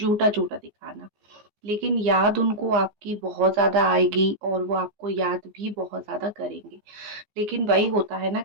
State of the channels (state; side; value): late; left; 14 ms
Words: दिखाना। लेकिन याद उनको आपकी बहुत ज़्यादा आएगी और वो आपको याद भी बहुत ज़्यादा करेंगे। लेकिन वही होता है ना